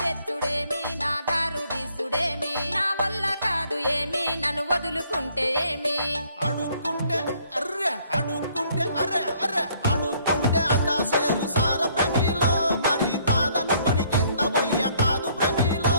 తెచ్చుడేమి నా దారు తీసుడేమి నా వల్ల కాదు ఏమి నన్ను వదులుకుంటే ఏమి అడుక్కుంటే అర్రే అడుక్కుంటే అదా సేరు సార ప్రమిలో మరి కాదనుకొని కింద పోయ్య కాదు ప్రమిలో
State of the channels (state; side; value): inverted; both; correlation -0.64